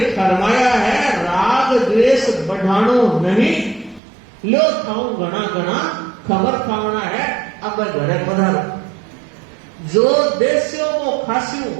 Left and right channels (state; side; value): drops out; left; at 4.0 s